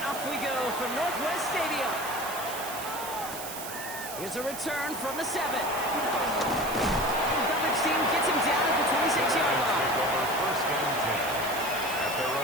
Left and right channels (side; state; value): right; noise; hiss, 9 dB below the sound